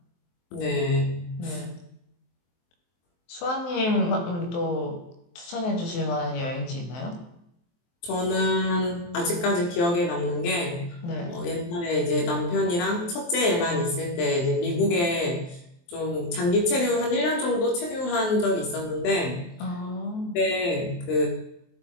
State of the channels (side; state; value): right; late; 23 ms